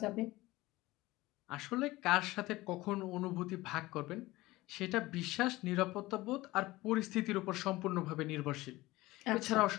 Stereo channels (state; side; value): quieter; right; 19.1 dB